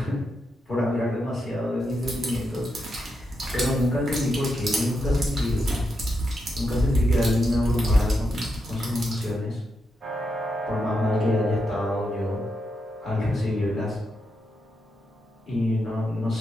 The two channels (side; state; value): both; normal; correlation 0.84